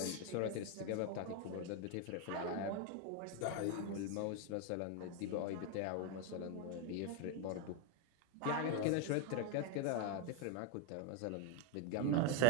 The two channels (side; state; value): both; different; correlation 0.01